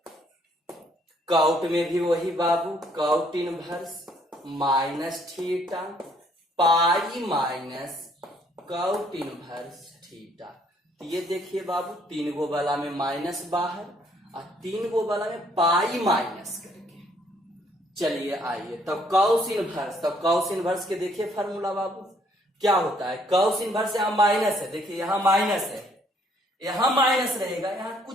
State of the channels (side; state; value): both; normal; correlation 0.65